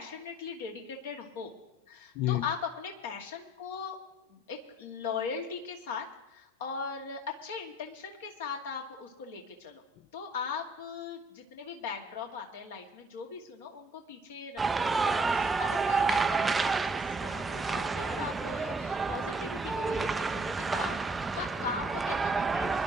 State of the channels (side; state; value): both; normal; correlation 0.63